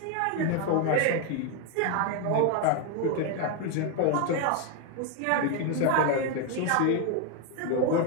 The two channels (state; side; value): different; both; correlation 0.01